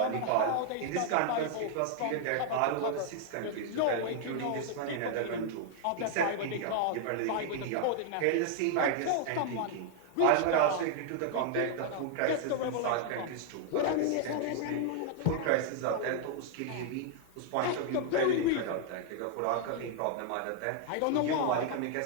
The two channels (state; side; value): different; both; correlation 0.00